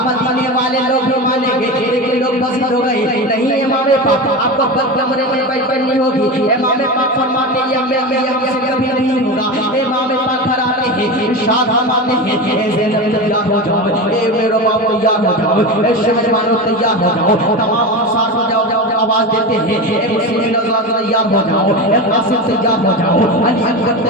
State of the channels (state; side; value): normal; both; correlation 0.23